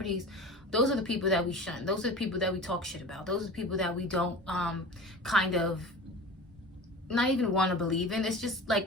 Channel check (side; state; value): both; normal; correlation 0.35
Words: those are the people that we shun. Those are the people that we talk shit about. Those are the people that we don't kind of not even want to believe in. It's just